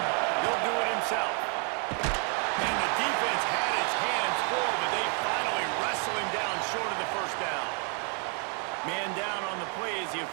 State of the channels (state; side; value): quieter; left; 39.1 dB